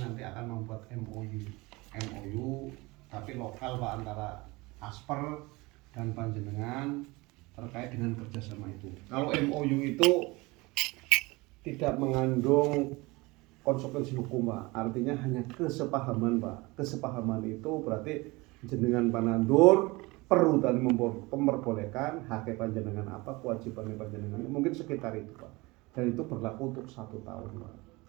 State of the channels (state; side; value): quieter; left; 23.4 dB